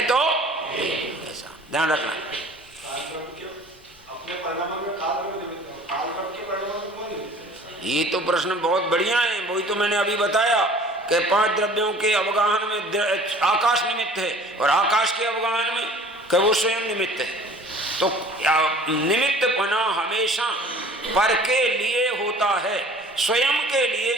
तो ऐसा। ध्यान रखना। ये तो प्रश्न बहुत बढ़िया है, वही तो मैंने अभी बताया कि 5 द्रव्यों के अवगाहन में आकाश निमित्त है, और आकाश के अवगाहन में कि वो स्वयं निमित्त है। तो निमित्त बना हमेशा पर के लिए होता है, स्वयं के लिए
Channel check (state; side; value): normal; both; correlation 0.48